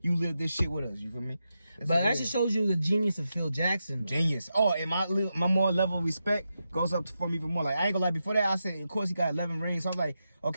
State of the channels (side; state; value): both; inverted; correlation -0.87